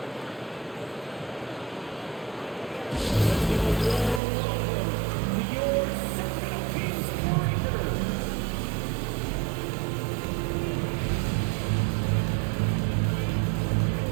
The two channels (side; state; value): left; drops out; at 4.2 s